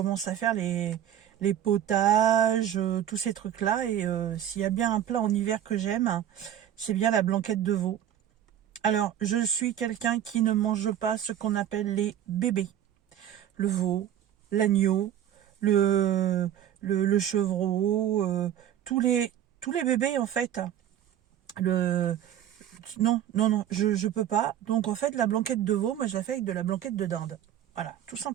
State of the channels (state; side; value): quieter; left; 10.8 dB